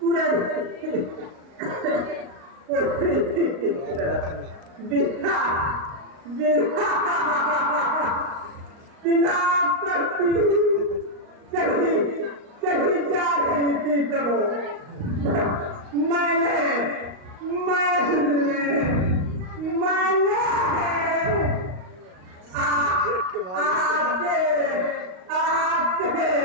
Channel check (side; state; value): left; late; 38 ms